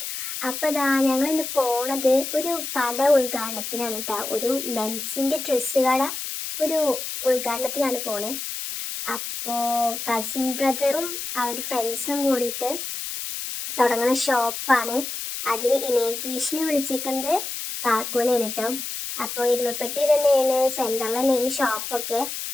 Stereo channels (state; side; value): noise; left; hiss, 6 dB below the sound